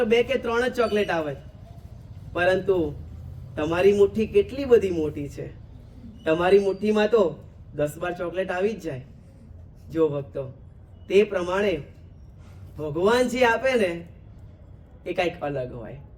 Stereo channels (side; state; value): both; identical; correlation 1.00